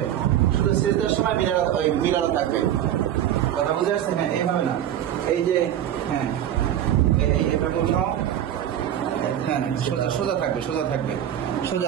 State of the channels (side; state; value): left; quieter; 10.9 dB